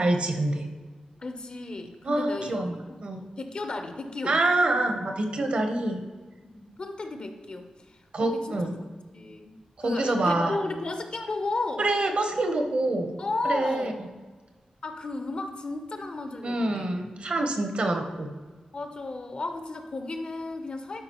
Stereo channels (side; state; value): both; normal; correlation 0.87